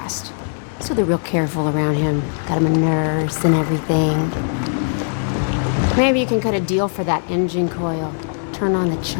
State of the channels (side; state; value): right; silent; digital silence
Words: So they're real careful around him. Got him a nurse and everything. Maybe you can cut a deal for that engine coil. Turn on the